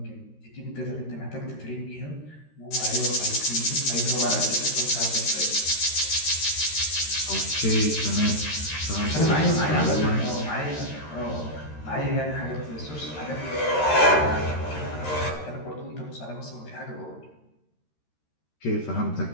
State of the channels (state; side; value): late; right; 13 ms